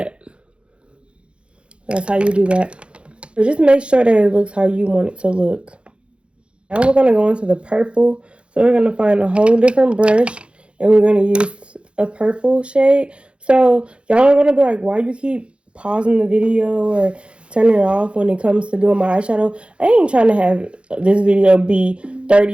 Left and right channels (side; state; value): left; late; 0.058 ms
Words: That's how you do that. So just make sure that it looks how you want it to look. Now we're going to go into the purple. So we're going to find a whole different brush, and we're going to use a purple shade. So y'all are going to be like, why you keep pausing the video or turning it off when it comes to doing my eyeshadow? I ain't trying to have this video be